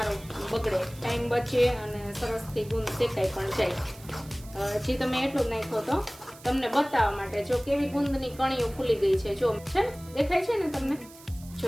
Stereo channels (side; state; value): right; noise; hiss, 21 dB below the sound